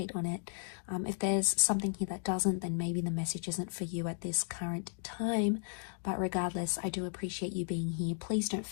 on it. If there's something here that doesn't, then maybe the message isn't for you at this current time. But regardless, I do appreciate you being here. Please don't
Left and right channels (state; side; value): silent; right; digital silence